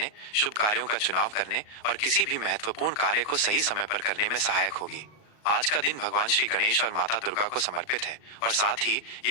शुभ कार्यों का चुनाव करने और किसी भी महत्वपूर्ण कार्य को सही समय पर करने में सहायक होगी। आज का दिन भगवान श्री गणेश और माता दुर्गा को समर्पित है और साथ ही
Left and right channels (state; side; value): late; right; 38 ms